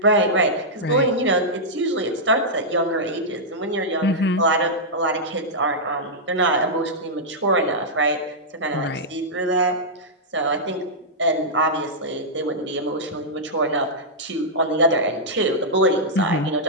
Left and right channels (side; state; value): both; normal; correlation -0.09